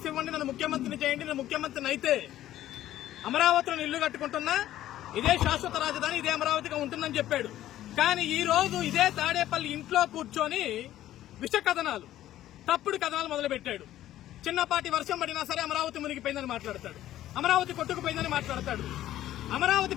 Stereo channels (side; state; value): right; quieter; 13.3 dB